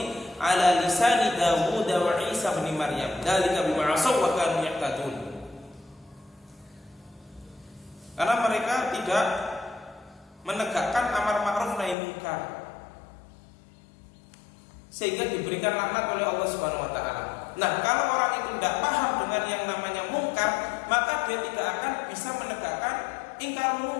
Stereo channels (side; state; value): right; drops out; at 12.0 s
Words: ala lisani Dawud wa Isa bin Maryam. Dzalika bima asaw wa kanu ya'tadun. Karena mereka tidak menegakkan amar ma'ruf nahi munkar sehingga diberikan laknat oleh Allah Subhanahu wa taala. Nah, kalau orang itu tidak paham dengan yang namanya mungkar, maka dia tidak akan bisa menegakkan ingkar